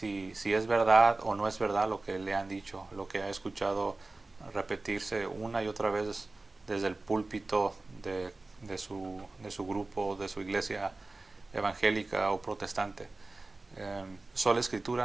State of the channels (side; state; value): left; quieter; 3.2 dB